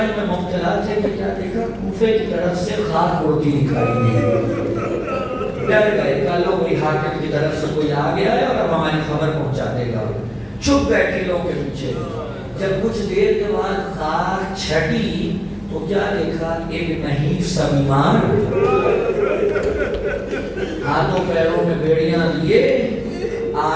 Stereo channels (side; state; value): both; identical; correlation 1.00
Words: میں مبتلا تھے کہ کیا دیکھا کوفے کی طرف سے خاک اڑتی دکھائی دی، ڈر گئے کہ لو کوئی حاکم کی طرف سے کوئی آ گیا ہے اور اب ہماری خبر پہنچا دے گا۔ چھپ بیٹھے لوگوں کے پیچھے، جب کچھ دیر کے بعد خاک چھٹی تو کیا دیکھا، ایک نحیف سا بیمار ہاتھوں پیروں میں بیڑیاں لیے